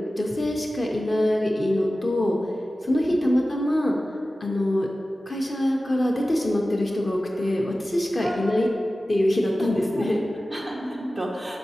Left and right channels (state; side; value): normal; both; correlation 0.95